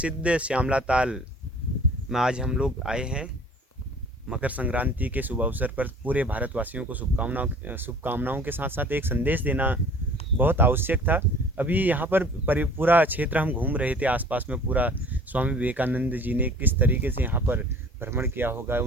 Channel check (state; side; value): normal; both; correlation 0.48